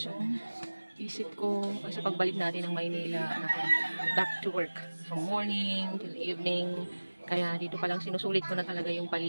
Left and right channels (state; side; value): inverted; both; correlation -1.00